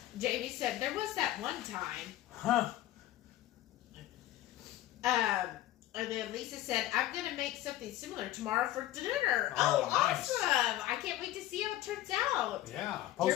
Jamie said, there was that one time. Huh. And then Lisa said, I'm going to make something similar tomorrow for dinner. Oh, nice. Awesome. I can't wait to see how it turns out. Yeah.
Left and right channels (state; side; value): quieter; right; 14.4 dB